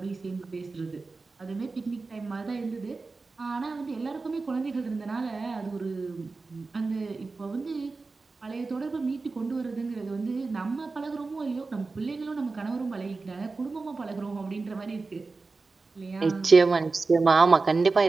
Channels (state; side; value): quieter; left; 3.9 dB